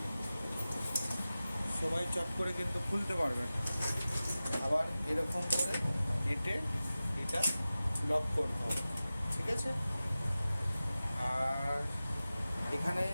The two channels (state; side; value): inverted; both; correlation -0.96